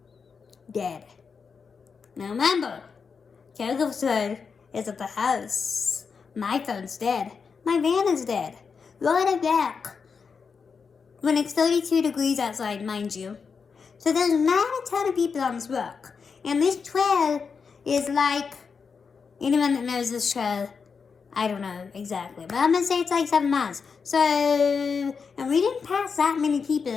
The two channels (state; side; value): quieter; right; 5.6 dB